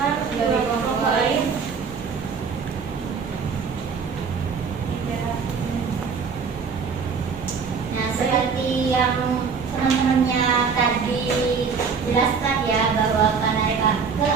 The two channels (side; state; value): left; quieter; 5.7 dB